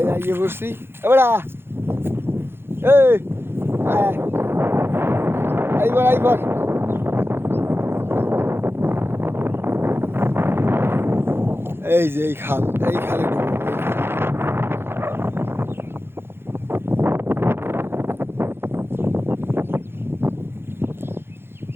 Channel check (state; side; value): late; left; 0.11 ms